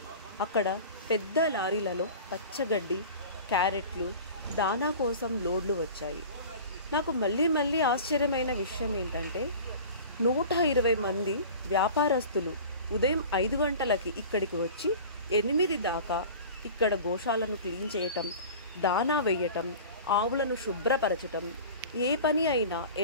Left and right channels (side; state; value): both; inverted; correlation -0.38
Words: అక్కడ పెద్ద లారీలలో పచ్చగడ్డి, క్యారెట్లు, దానా కోసం లోడ్లు వచ్చాయి. నాకు మళ్ళీ ఆశ్చర్యమైన విషయం ఏంటంటే 120 మంది వ్యాపారస్తులు ఉదయం 5 గంటలకి ఇక్కడికి వచ్చి 8 దాకా ఇక్కడ గోశాలను క్లీన్ చేయటం, దానా వేయటం, ఆవులను శుభ్రపరచటం, ఏ పని అయినా